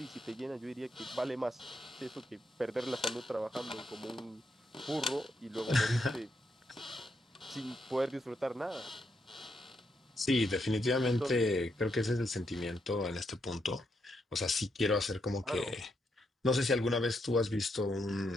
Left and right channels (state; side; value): normal; both; correlation 0.80